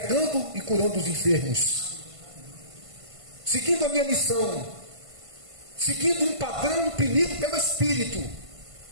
e curando os enfermos, seguindo a minha missão, seguindo um padrão imprimido pelo Espírito,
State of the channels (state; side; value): late; left; 1.5 ms